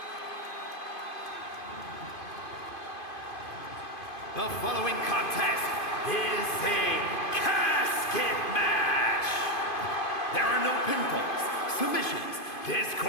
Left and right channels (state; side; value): late; right; 2.5 ms